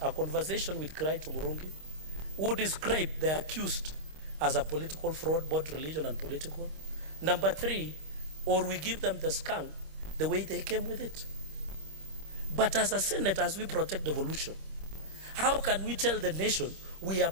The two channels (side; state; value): left; late; 26 ms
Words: a conversation with Kawira Murungi, who described the accused as a political fraud, both religion and political. Number 3, or we give them the skunk the way they came with it. But as a Senate, as we protect devolution, how can we tell the nation we are